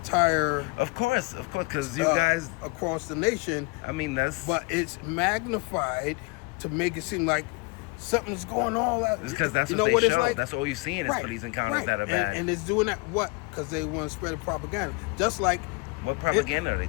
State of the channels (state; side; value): quieter; right; 28.1 dB